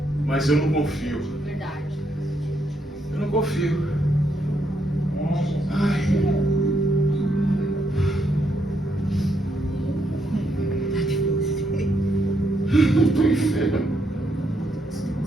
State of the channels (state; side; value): normal; both; correlation 0.77